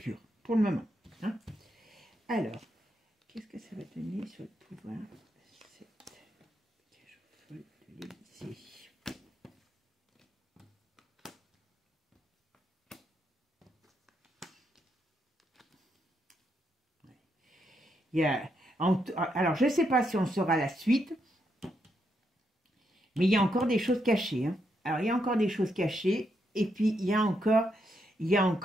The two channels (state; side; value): normal; both; correlation 0.80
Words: pour le moment. Hein. Alors, qu'est-ce que ça va donner sur le pouvoir? Alors, je ne sais pas si on saura la suite, mais il y a encore des choses cachées. Hein. Alors, il y a encore des choses cachées. Et puis, alors,